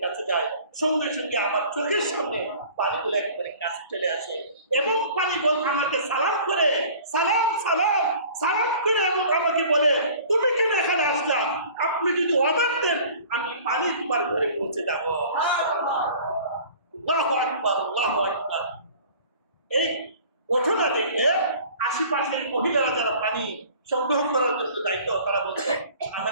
কাছে যাই, সঙ্গে সঙ্গে আমার চোখের সামনে পানিগুলো একবারে কাছে চলে আসে এবং পানি বল আমাকে সালাম করে সালাম সালাম সালাম করে এবং আমাকে বলে তুমি কেন এখানে আসলা, আপনি যদি অর্ডার দেন আমি পানি তোমার ঘরে পৌঁছে যাবো। আল্লাহু আকবার, আল্লাহু আকবার। এই ঘটনা দেখে আশেপাশের মহিলারা যারা পানি সংগ্রহ করার জন্য দায়িত্ব, তারা বলছে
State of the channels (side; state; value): both; inverted; correlation -0.47